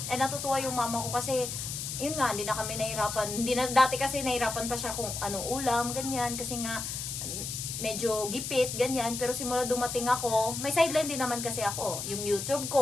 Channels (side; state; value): left; noise; hiss, 5 dB below the sound